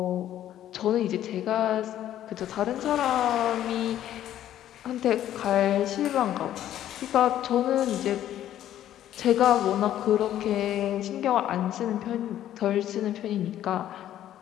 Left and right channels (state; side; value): quieter; right; 11.9 dB